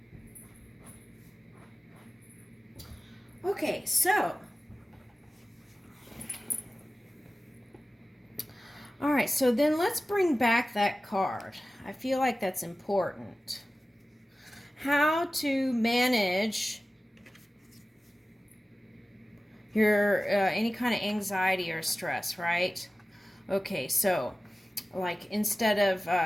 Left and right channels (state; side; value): normal; both; correlation 0.96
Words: Okay, so, all right, so then let's bring back that card. I feel like that's important. How to manage your any kind of anxiety or stress, right? Okay, so like instead of